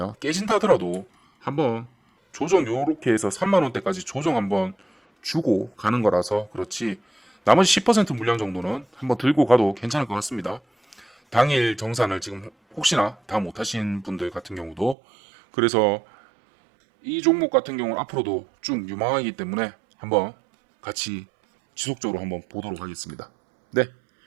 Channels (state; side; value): drops out; left; at 15.0 s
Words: 깨진다 하더라도 한번 조정 요렇게 해서 3만원대까지 조정 한번 주고 가는 거라서 그렇지, 나머지 10% 물량 정도는 한번 들고 가도 괜찮을 것 같습니다. 당일 정산을 지금 혹시나 다 못하신 분들 같은 경우도, 그래서 이 종목 같은 경우는 앞으로도 쭉 유망하기 때문에 한번 같이 지속적으로 한번 보도록 하겠습니다. 네,